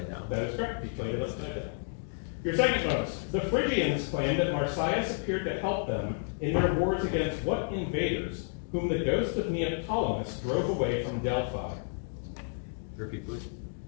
down. That is correct. He played it upside down. Your second bonus. The Phrygians claimed that Marsyas appeared to help them in their wars against what invaders, whom the ghost of Neoptolemus drove away from Delphi? Repeat, please.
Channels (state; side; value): silent; right; digital silence